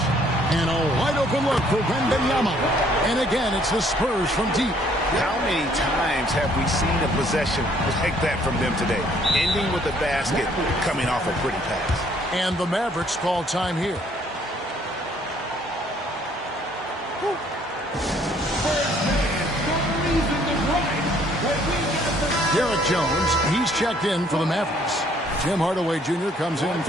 And a wide open look for Wembanyama. And again, it's the Spurs from deep. How many times have we seen a possession like that from them today? Ending with the basket, coming off a pretty pass. And the Mavericks call time here. Derek Jones, he's checked in for the Mavericks. Tim Hardaway Jr. comes in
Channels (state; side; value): normal; both; correlation 0.63